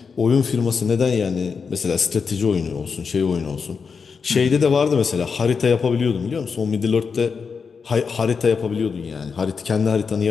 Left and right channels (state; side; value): quieter; right; 5.6 dB